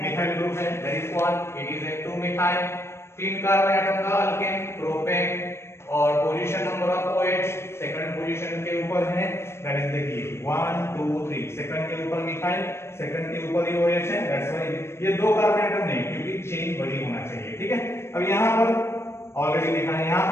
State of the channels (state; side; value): late; right; 0.12 ms